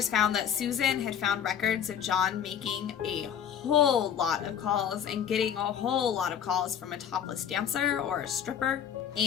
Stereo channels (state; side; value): quieter; right; 8.8 dB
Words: found that Susan had found records of John making a whole lot of calls and getting a whole lot of calls from a topless dancer or a stripper.